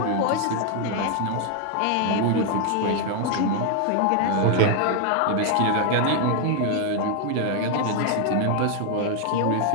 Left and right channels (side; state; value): both; different; correlation 0.00